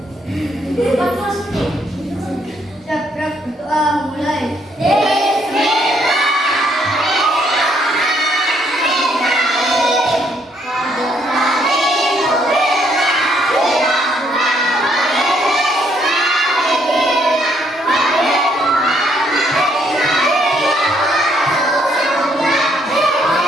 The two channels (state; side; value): normal; both; correlation 0.70